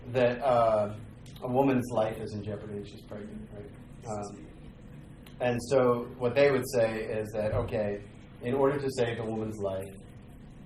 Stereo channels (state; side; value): identical; both; correlation 1.00